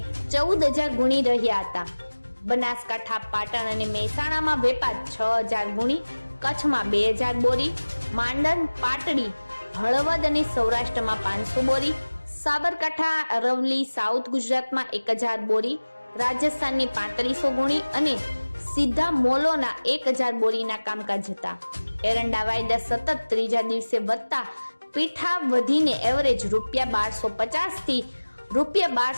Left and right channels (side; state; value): both; inverted; correlation -1.00